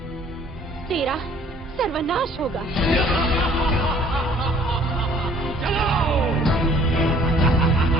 तेरा सर्वनाश होगा।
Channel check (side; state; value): both; normal; correlation 0.56